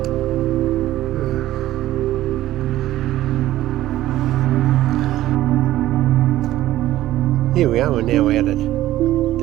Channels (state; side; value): quieter; left; 14.7 dB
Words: Here we are, we're now out at